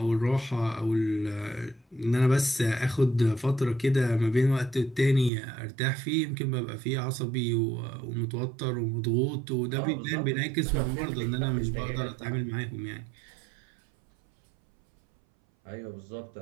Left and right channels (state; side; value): drops out; left; at 5.3 s